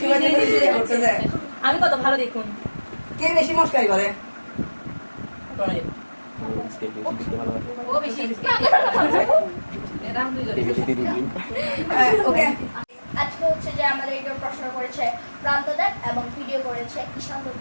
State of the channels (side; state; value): both; inverted; correlation -1.00